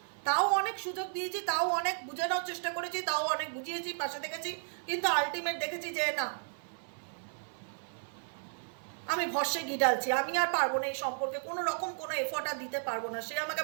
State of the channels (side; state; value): left; silent; digital silence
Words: তাও অনেক সুযোগ দিয়েছি, তাও অনেক বুঝে নেওয়ার চেষ্টা করেছি, তাও অনেক বুঝিয়েছি, পাশে দেখেছি, কিন্তু আলটিমেট দেখেছি যে না, আমি ভরসে ঘি ঢালছি, আমি আর পারবো না এই সম্পর্কে কোনো রকম কোনো এফোর্ট আর দিতে পারবো না। সে আমাকে